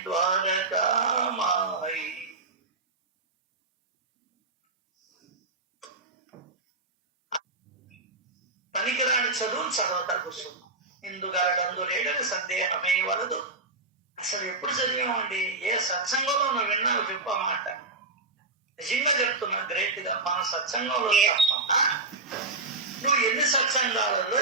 ద్వారకామాయి. పనికిరాని చదువును చదవతా కూర్చున్నాం. ఇందుగలడందు లేడని సందేహమే వలదు. అసలు ఎప్పుడు చదివామండి? ఏ సత్సంగంలో నువ్వు విన్నావు చెప్పు ఆ మాట. నిజంగా చెప్తున్నా, గ్రేట్ గా మన సత్సంగంలో తప్ప నువ్వు ఎన్ని సత్సంగాలలో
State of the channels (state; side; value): quieter; left; 3.3 dB